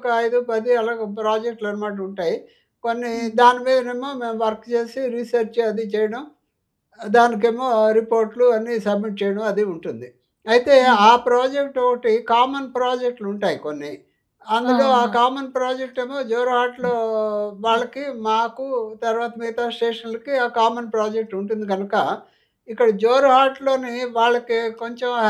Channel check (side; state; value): both; identical; correlation 1.00